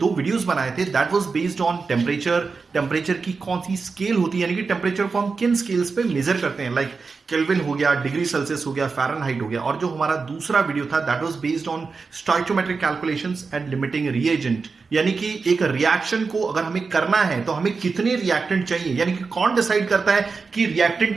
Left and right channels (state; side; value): quieter; left; 4.6 dB